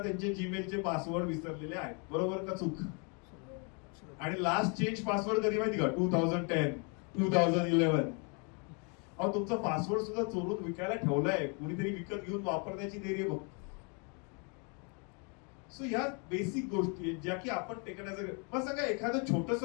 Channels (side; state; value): right; quieter; 35.7 dB